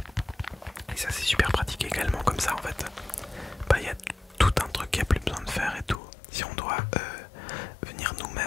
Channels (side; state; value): right; drops out; at 6.0 s